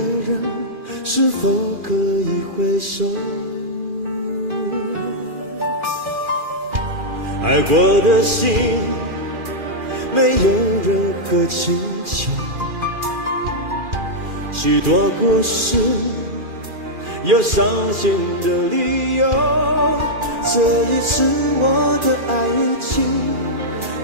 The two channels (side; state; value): left; late; 2.4 ms